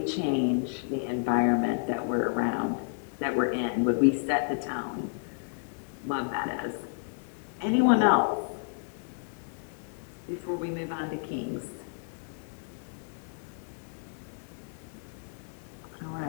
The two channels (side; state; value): right; silent; digital silence